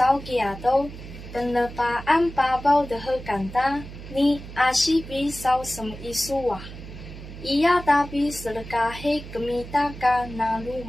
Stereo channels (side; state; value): right; noise; hum, 13 dB below the sound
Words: kiato penlepaan babau dehekanta ni ashi pi sau sem isuwah. Ia tapi selekahe kemita ka nalu